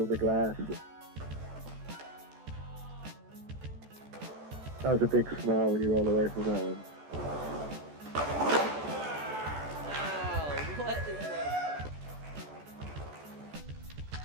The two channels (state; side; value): late; left; 14 ms